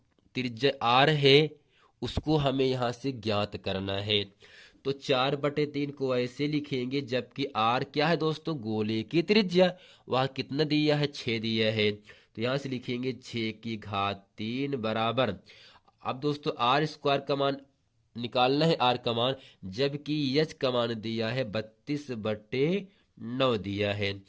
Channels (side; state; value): both; identical; correlation 1.00